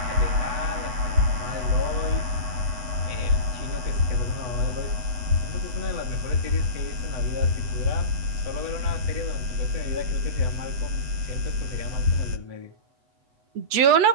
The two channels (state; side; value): late; left; 8.0 ms